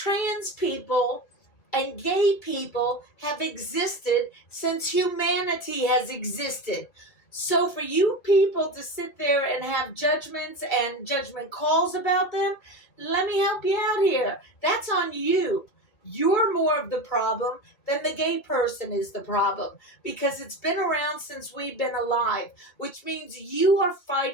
people and gay people have existed since humanity has existed. So for you people to sit there and have judgments and judgment calls about them, let me help you out here. That's on you. You're more of the problem than the gay person is the problem, because it's been around since we've been alive, which means you are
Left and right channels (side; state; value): right; late; 2.3 ms